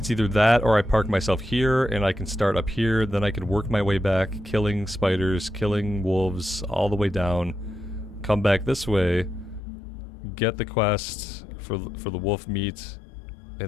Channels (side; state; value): right; drops out; at 9.6 s